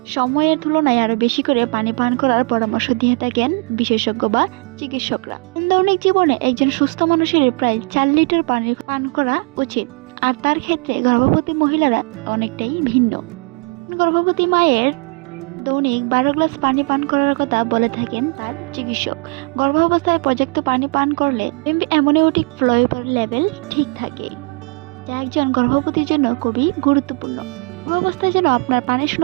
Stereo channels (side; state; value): left; quieter; 34.2 dB